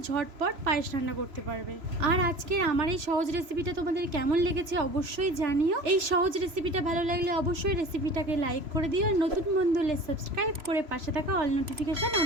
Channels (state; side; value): late; left; 3.0 ms